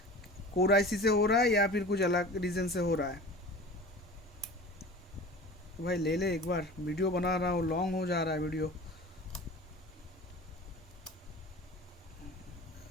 कोर आईसी से हो रहा है या फिर कुछ अलग रीज़न से हो रहा है। तो भाई ले ले एक बार, वीडियो बना रहा हूँ, लॉन्ग हो जा रहा है वीडियो।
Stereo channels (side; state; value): both; normal; correlation 0.37